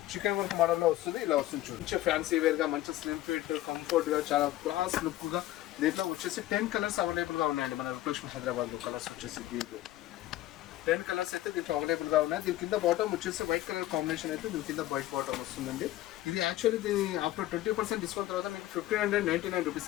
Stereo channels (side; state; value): right; quieter; 15.0 dB